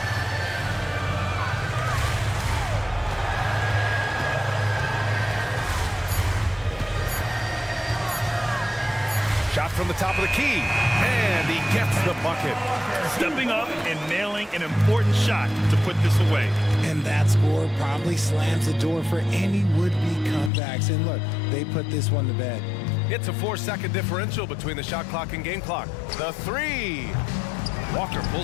Shot from the top of the key. And he gets the bucket. Stepping up and nailing an important shot to put this away. And that score probably slams the door for any would-be comebacks. And look, they put this one to bed. It's a 4-second differential between the shot clock and game clock. The three. Walker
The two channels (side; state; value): right; drops out; at 20.5 s